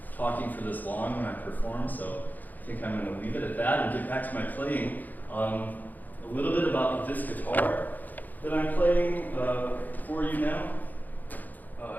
talking for this long when I perform, so I think I'm going to leave it at that and get back to my playing. A little bit about this guitar that I'm playing for you now.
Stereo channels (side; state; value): right; late; 0.083 ms